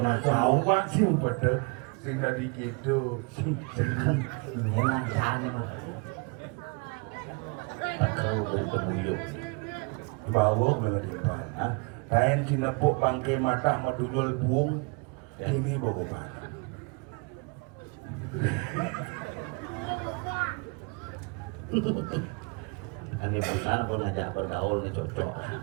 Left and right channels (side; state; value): left; quieter; 31.1 dB